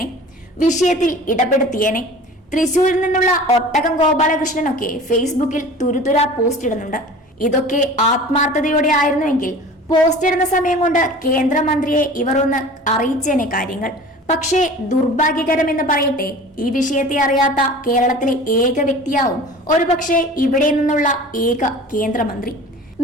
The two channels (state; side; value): normal; both; correlation 0.41